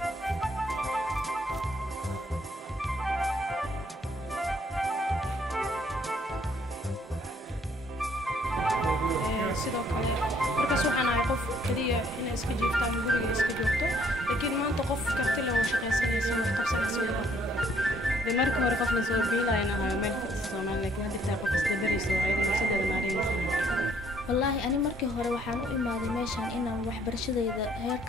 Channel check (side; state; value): both; normal; correlation 0.65